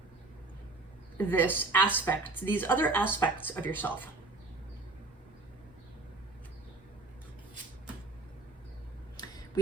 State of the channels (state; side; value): quieter; left; 3.2 dB